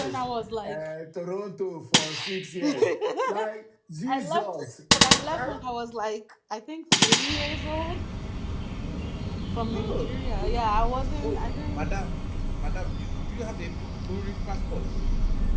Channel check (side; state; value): both; identical; correlation 1.00